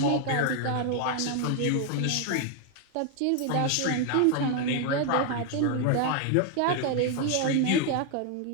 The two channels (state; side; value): different; both; correlation 0.00